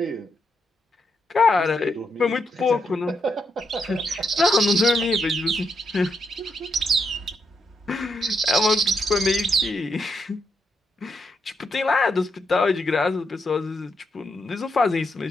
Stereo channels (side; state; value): both; normal; correlation 0.80